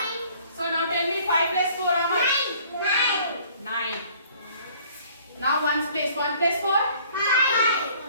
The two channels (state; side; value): inverted; both; correlation -0.55